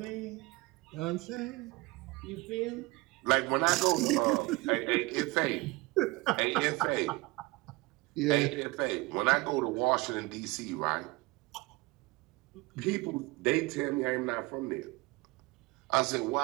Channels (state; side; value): quieter; left; 22.6 dB